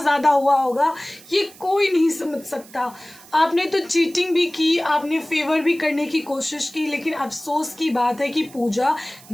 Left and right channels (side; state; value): right; noise; hiss, 22 dB below the sound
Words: हुआ होगा ये कोई नहीं समझ सकता। आपने तो चीटिंग भी की, आपने फेवर भी करने की कोशिश की, लेकिन अफसोस की बात है कि पूजा